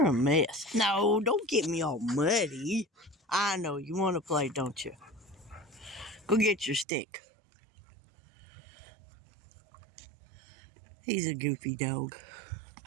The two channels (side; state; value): left; drops out; at 6.9 s